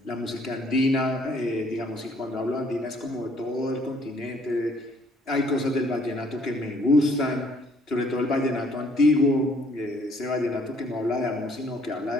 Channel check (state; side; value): normal; both; correlation 0.63